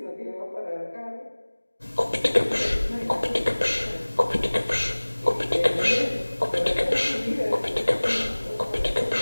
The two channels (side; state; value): both; inverted; correlation -1.00